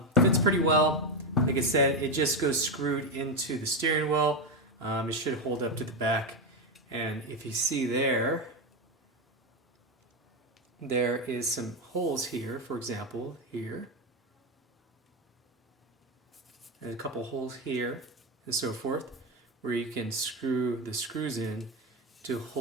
fits pretty well. Like I said, it just goes screwed into the steering wheel. It should hold up to the back. And if you see there is some holes here, for example, here. And a couple holes here, and so forth, where you can screw the screws in to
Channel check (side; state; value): both; normal; correlation 0.11